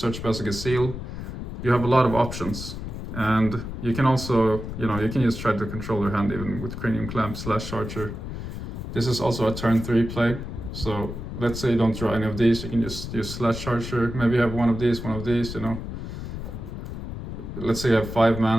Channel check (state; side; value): noise; left; rumble, 7 dB below the sound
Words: Balesk Baj. You have a lot of options. And you can also, you know, you can just try to control your hand even with Cranium Clamp, Slash Charger. This is also a turn 3 play. So let's say you don't draw any of these, you can just use Slash Charger. Maybe you have one of these, you know. Let's say you have 5